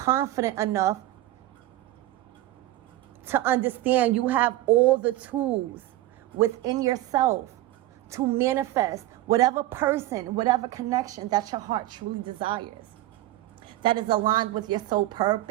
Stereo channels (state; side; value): quieter; left; 15.7 dB